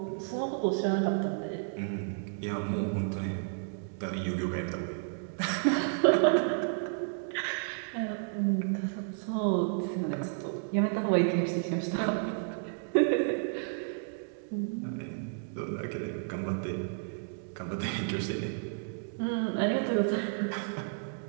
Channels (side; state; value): left; silent; digital silence